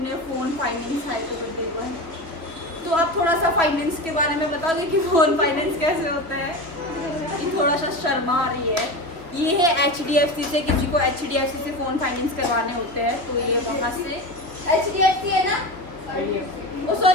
फ़ोन फाइनेंस है तो कर देगा। तो आप थोड़ा सा फाइनेंस के बारे में बताओगे कि फ़ोन फाइनेंस कैसे होता है। ये थोड़ा सा शर्मा आ रही है। ये है HDFC से, किसी को HDFC से फ़ोन फाइनेंस करवाने होते हैं तो ये वहाँ से HDFC है ना, ओ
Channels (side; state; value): left; late; 3.2 ms